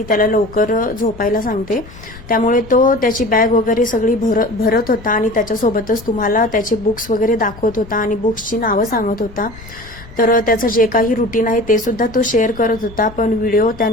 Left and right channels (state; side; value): noise; left; rumble, 18 dB below the sound